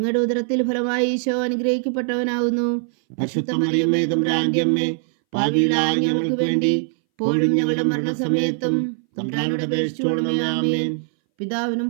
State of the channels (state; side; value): silent; left; 62 dB below the other